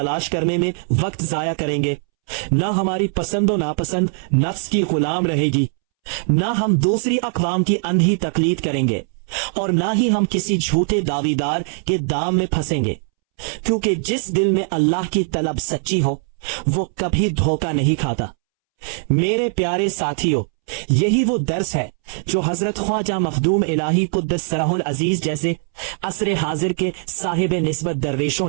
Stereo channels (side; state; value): left; silent; 65 dB below the other